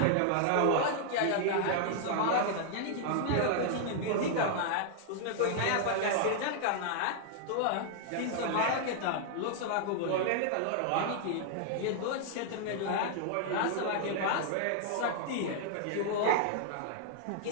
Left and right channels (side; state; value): both; different; correlation -0.01